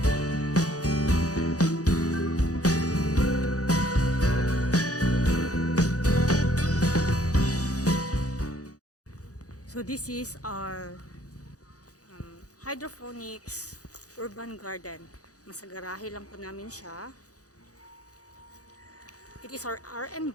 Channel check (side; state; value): right; late; 0.67 ms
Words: So this is our hydroponics urban garden. Nasa garahe lang po namin siya. It is our